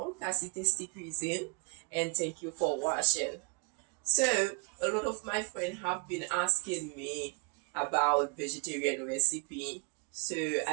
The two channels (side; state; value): left; quieter; 34.3 dB